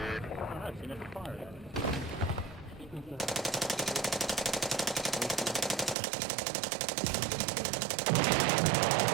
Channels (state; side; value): drops out; left; at 6.0 s